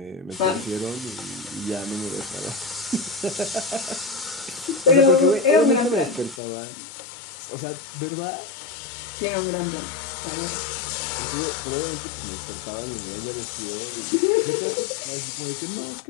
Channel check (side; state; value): right; drops out; at 6.4 s